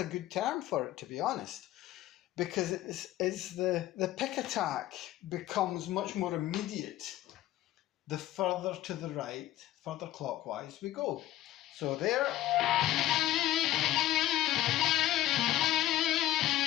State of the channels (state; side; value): quieter; right; 14.2 dB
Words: good term for it, to be honest, because it's the pick attack becomes much more immediate the further to the right, further clockwise we go. So there.